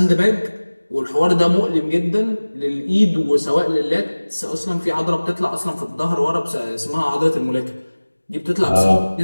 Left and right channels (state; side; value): inverted; both; correlation -1.00